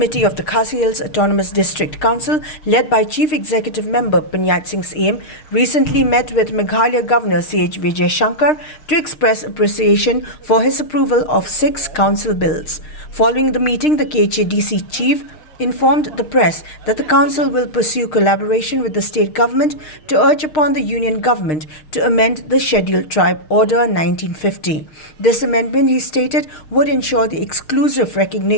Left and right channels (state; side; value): late; right; 6.5 ms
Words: of the Khasi Hills Autonomous District Council, led by Chief Executive Member Pyniaid Sing Syiem, recently met with Meghalaya Governor C.H. Vijayshankar to express appreciation for his approval of 6 council bills. Following the meeting, the KHADC Chief informed the press that the council will pursue collaboration with the state government to urge upon the union government to amend the Scheduled Tribe Order 1950. This amendment, he stated, would ensure the exclusive